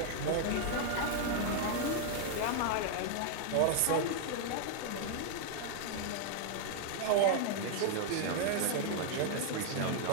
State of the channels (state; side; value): different; both; correlation 0.00